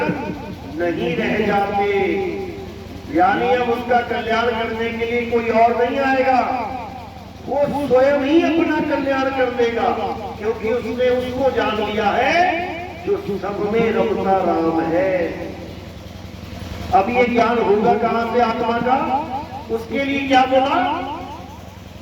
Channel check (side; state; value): both; identical; correlation 1.00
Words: नहीं रह जाते। यानी अब उसका कल्याण करने के लिए कोई और नहीं आएगा, वो स्वयं ही अपना कल्याण कर देगा, क्योंकि उसने उसको जान लिया है जो सब में रमता राम है। अब ये ज्ञान होगा कहां से? आत्मा का। उसके लिए क्या बोला?